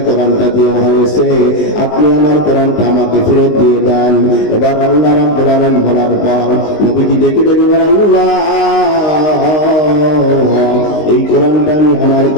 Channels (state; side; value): late; right; 19 ms